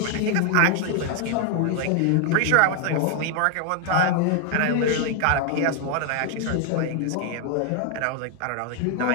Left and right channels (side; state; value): both; different; correlation 0.00